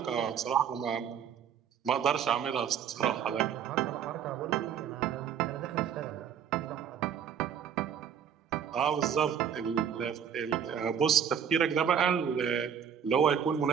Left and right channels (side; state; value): left; quieter; 8.1 dB